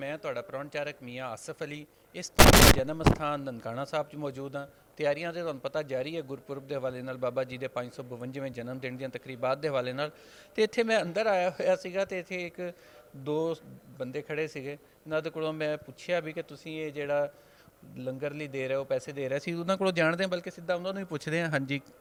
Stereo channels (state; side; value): identical; both; correlation 1.00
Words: ਤੁਹਾਡਾ ਪ੍ਰੋਣਚਾਰਕ ਮੀਆਂ ਆਸਫ ਅਲੀ। ਇਸ ਤਰ੍ਹਾਂ ਜਨਮ ਸਥਾਨ ਨਨਕਾਣਾ ਸਾਹਿਬ 'ਚ ਮੌਜੂਦ ਹਾਂ। ਤਿਆਰੀਆਂ ਤੇ ਤੁਹਾਨੂੰ ਪਤਾ ਜਾਰੀ ਹੈ ਗੁਰਪੁਰਬ ਦੇ ਹਵਾਲੇ ਨਾਲ, ਬਾਬਾ ਜੀ ਦੇ 552ਵੇਂ ਜਨਮ ਦਿਨ ਦੀਆਂ ਤਕਰੀਬਾਤ ਦੇ ਹਵਾਲੇ ਨਾਲ। ਤੇ ਇੱਥੇ ਮੈਂ ਅੰਦਰ ਆਇਆ ਹੋਇਆ ਸੀਗਾ ਤੇ ਇੱਥੇ ਇੱਕ ਦੋ ਬੰਦੇ ਖੜੇ ਸੀਗੇ, ਇਹਨਾਂ ਦੇ ਕੋਲੋਂ ਮੈਂ ਪੁੱਛਿਆ ਵੀ ਕਿ ਤੁਸੀਂ ਇਹ ਜਿਹੜਾ ਲੰਗਰ ਲਈ ਦੇ ਰਹੇ ਹੋ, ਪੈਸੇ ਦੇ ਰਹੇ ਸੀ, ਉਹਨਾਂ ਕੋਲੋਂ ਜਾਣਦੇ ਹਾਂ, ਬਲਕਿ ਸਿੱਧਾ ਉਹਨਾਂ ਨੂੰ ਹੀ ਪੁੱਛਦੇ ਹਾਂ। ਹਾਂਜੀ,